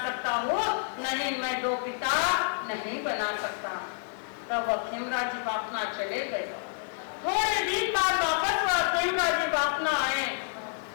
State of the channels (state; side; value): silent; right; 58 dB below the other